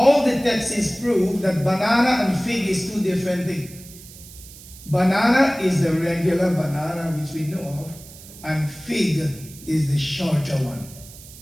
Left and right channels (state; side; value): noise; right; hiss, 18 dB below the sound